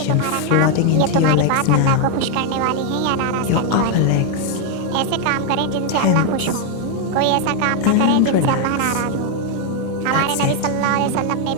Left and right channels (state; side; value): different; both; correlation 0.01